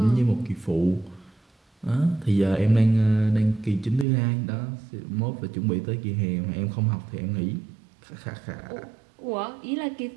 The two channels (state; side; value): drops out; left; at 4.0 s